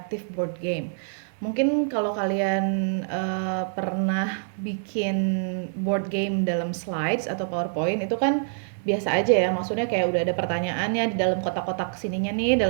board game. Mungkin kalau kalian pernah bikin board game dalam slides atau PowerPoint itu kan biasa aja ya, maksudnya kayak udah ada pertanyaannya di dalam kotak-kotak sininya nih,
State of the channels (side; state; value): left; silent; digital silence